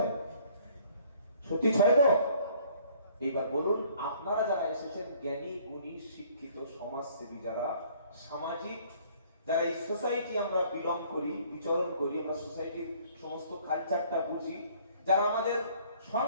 সত্যি 6 তো? এইবার বলুন, আপনারা যারা এসেছেন জ্ঞানী গুণী শিক্ষিত সমাজসেবী, যারা সামাজিক, যারা এই সোসাইটি আমরা বিলং করি, বিচরণ করি, আমরা সোসাইটির সমস্ত কালচারটা বুঝি, যারা আমাদের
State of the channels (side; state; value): both; inverted; correlation -0.58